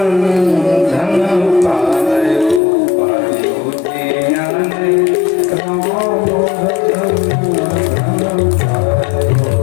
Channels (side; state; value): right; drops out; at 2.6 s